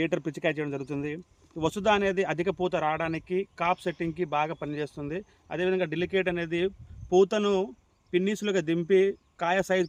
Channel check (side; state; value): both; identical; correlation 1.00